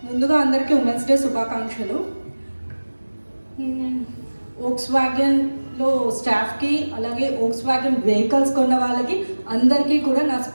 ముందుగా అందరికీ women's day శుభాకాంక్షలు. వోక్స్ వ్యాగన్లో స్టాఫ్కి, అలాగే వోక్స్ వ్యాగన్ వెహికల్స్ కొన్న వాళ్ళకి అందరికీ కూడా నా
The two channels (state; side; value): inverted; both; correlation -1.00